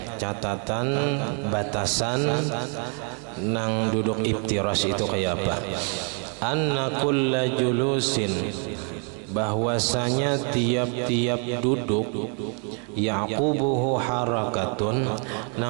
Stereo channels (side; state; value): left; quieter; 39.7 dB